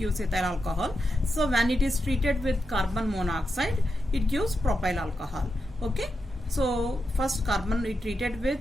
ethyl alcohol. So when it is treated with carbon monoxide, it gives propyl alcohol. Okay. So first carbon we treated with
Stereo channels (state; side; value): normal; both; correlation 0.87